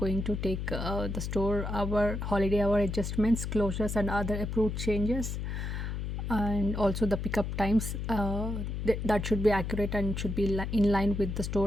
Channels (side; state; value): left; noise; hum, 4 dB below the sound